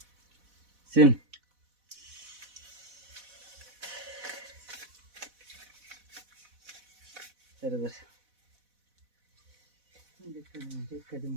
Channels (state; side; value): late; left; 4.1 ms